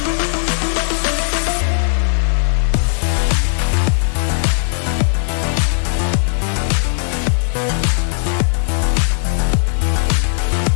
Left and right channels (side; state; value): right; silent; 64 dB below the other